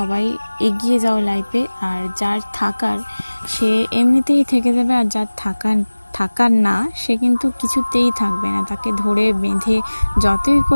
এগিয়ে যাও লাইফে, আর যার থাকার সে এমনিতেই থেকে যাবে, আর যার থাকার থাকার না সে কিন্তু কিছুতেই থাকবে না। তাকে ধরে বেঁধে যতই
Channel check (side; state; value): both; inverted; correlation -1.00